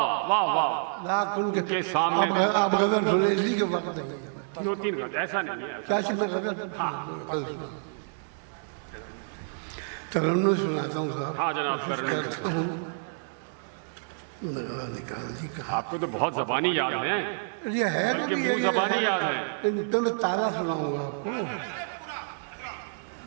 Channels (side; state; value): left; silent; 59 dB below the other